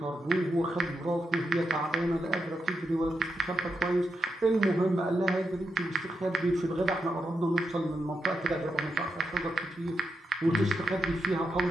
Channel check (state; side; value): normal; both; correlation 0.85